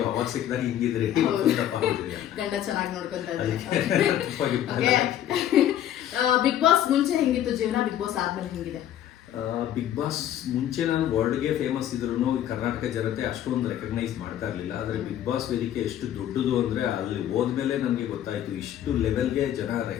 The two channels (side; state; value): right; quieter; 11.3 dB